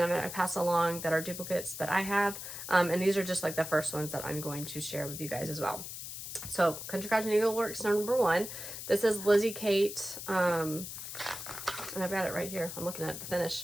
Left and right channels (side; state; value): left; noise; hiss, 8 dB below the sound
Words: I'm going to pass along that are duplicates that I have. And these are just like the first ones that I'm going to share with you guys as well. So Country Cottage Needleworks number 1. This is Lizzie Kate. And I've got it right here. I'm looking at the